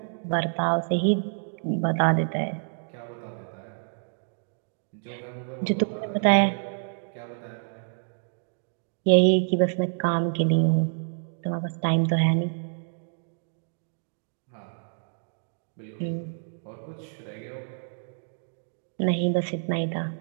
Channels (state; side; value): silent; left; digital silence